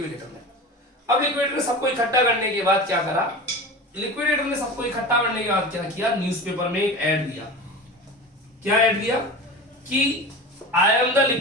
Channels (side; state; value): both; normal; correlation 0.31